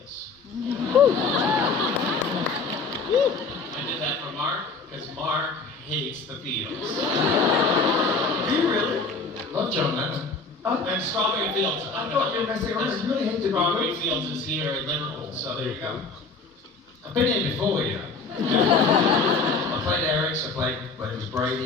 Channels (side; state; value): right; quieter; 4.1 dB